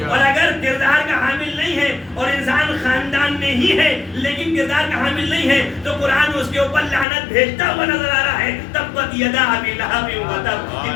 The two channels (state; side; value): drops out; right; at 7.1 s